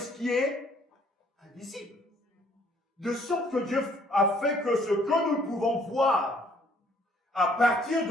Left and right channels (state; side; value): normal; both; correlation 0.62